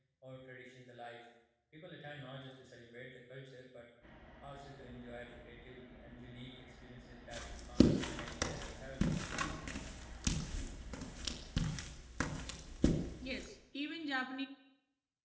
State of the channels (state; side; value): identical; both; correlation 1.00